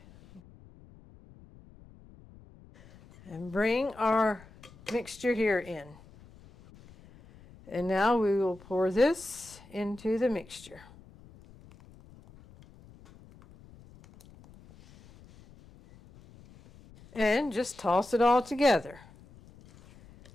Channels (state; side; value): noise; left; rumble, 23 dB below the sound